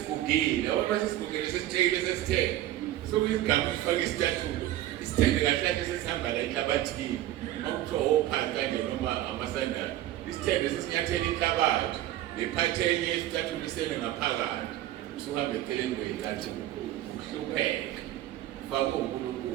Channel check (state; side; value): quieter; left; 13.8 dB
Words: Ngoba sesigugile sesitshekile sesithenge. Sokuyigama ukufaka isicathulo. Isithenge kahle sesihamba la enhlabathini. Makuthiwa ophansi kanje noma amasandali. Isithenge sesinyathela inhlabathi. Lephatheni yesicathulo isele ngaphakathi. Usuhambe eceleni kwey'cathulo. Uhlupheka. Ufake